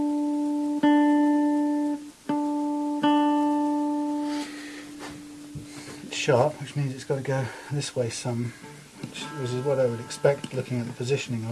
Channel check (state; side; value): identical; both; correlation 1.00